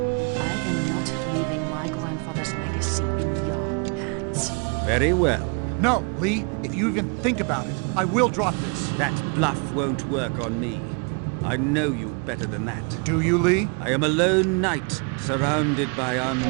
not leaving my grandfather's legacy in your hands. Very well. No, Lee. If you even think about it, I will drop this. That bluff won't work on me. I know you better than that. Do you, Lee? I am a lone knight, surrounded by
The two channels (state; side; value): quieter; left; 35.1 dB